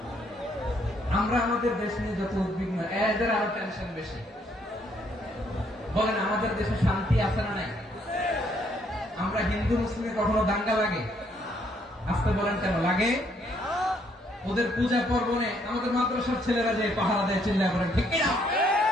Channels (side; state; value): both; normal; correlation 0.69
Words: আমরা আমাদের দেশ নিয়ে যত উদ্বিগ্ন, এদের আরো টেনশন বেশি। বলেন, আমাদের দেশে শান্তি আছে না নাই? আমরা হিন্দু মুসলিমে কখনো দাঙ্গা লাগে? আসতে বলেন কেন লাগে? ওদের পূজা পর্বণে আমাদের মাদ্রাসার ছেলেরা যে পাহারা দেয়, চিল্লা করেন ঠিক কিনা?